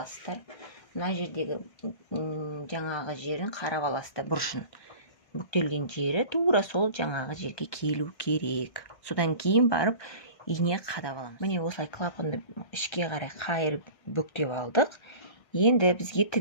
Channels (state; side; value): late; right; 1.6 ms